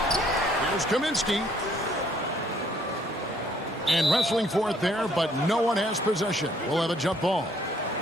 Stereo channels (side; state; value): both; normal; correlation 0.64